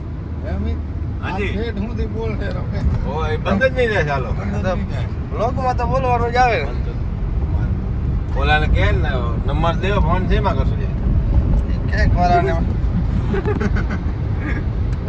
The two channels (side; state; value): both; identical; correlation 1.00